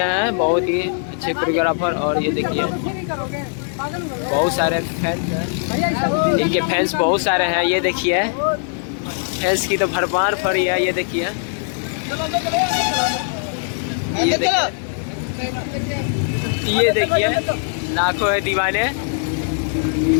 हैं, बहुत ही अच्छे कोरियोग्राफर। और ये देखिए बहुत सारे फैंस हैं, इनके फैंस बहुत सारे हैं। ये देखिए फैंस की तो भरमार पड़ी है। ये देखिए ये देखिए लाखों है दीवाने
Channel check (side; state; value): right; silent; digital silence